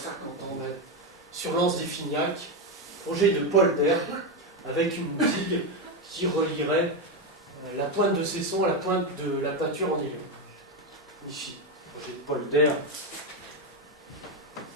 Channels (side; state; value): both; normal; correlation 0.10